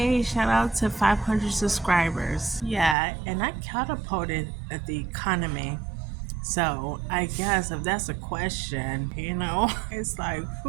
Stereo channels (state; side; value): drops out; left; at 3.0 s